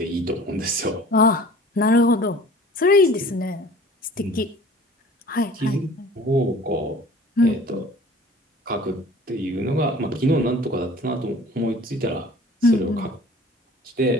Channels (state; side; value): normal; both; correlation 0.46